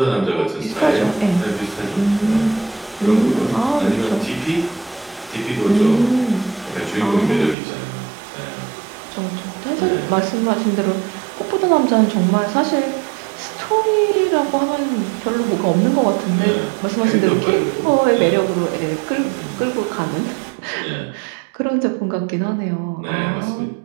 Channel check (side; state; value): left; drops out; at 7.6 s